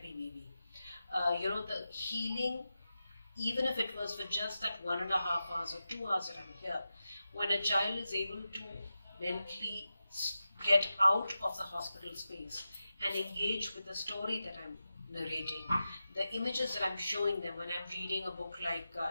maybe. The healing, even if it was for just that 1.5 hours or 2 hours that I'm here, when a child is able to mentally get out of the hospital space and engage with the story that I'm narrating, the images that I'm showing them when I'm reading a book like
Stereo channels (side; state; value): both; inverted; correlation -0.91